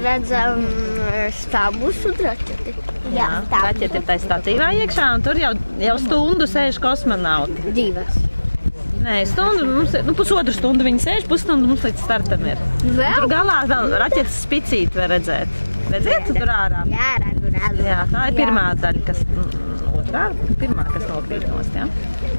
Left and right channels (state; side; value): inverted; both; correlation -1.00